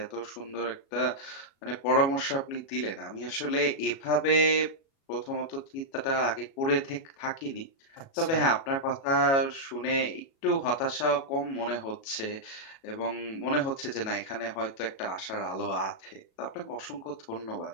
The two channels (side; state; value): right; late; 37 ms